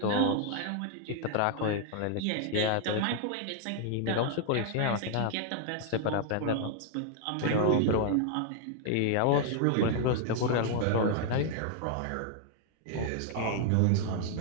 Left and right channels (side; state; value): both; different; correlation 0.00